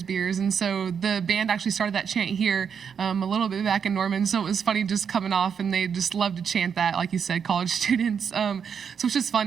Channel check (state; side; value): quieter; left; 7.0 dB